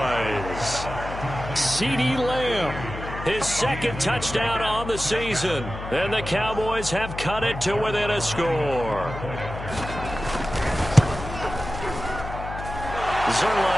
CeeDee Lamb, his 2nd touchdown on the season. And the Cowboys have cut it to within a score.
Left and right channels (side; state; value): left; noise; hum, 9 dB below the sound